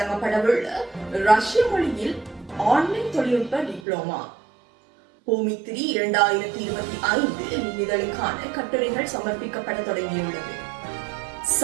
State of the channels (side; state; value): left; drops out; at 3.8 s